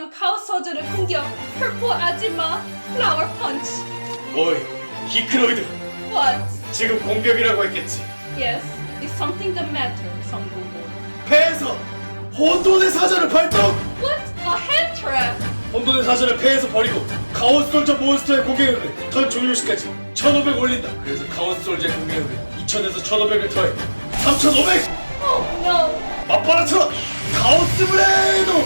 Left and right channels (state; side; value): inverted; both; correlation -1.00